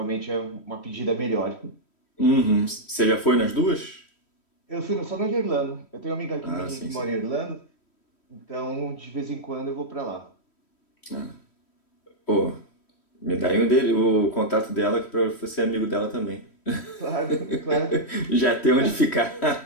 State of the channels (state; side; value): late; right; 3.1 ms